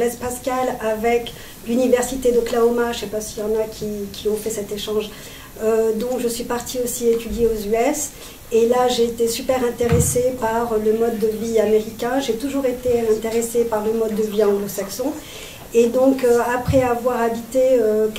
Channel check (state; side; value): identical; both; correlation 1.00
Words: Pascal avec l'université d'Oklahoma, je ne sais pas s'il y en a qui ont fait cet échange, donc je suis partie aussi étudier aux US. Et là, j'ai été super intéressée par le mode de vie américain. J'ai toujours été intéressée par le mode de vie anglo-saxon. Et donc, après avoir habité